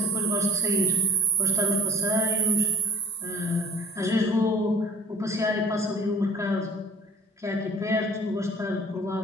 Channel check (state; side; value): normal; both; correlation 0.45